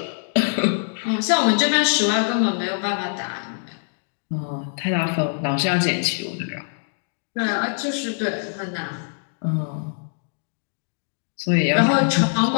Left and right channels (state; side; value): silent; right; digital silence